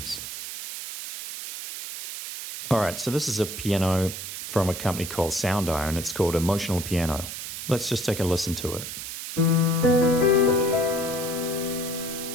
Alright, so this is a piano from a company called Sound Iron. It's called Emotional Piano. Let's just take a listen to it.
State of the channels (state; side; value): noise; right; hiss, 8 dB below the sound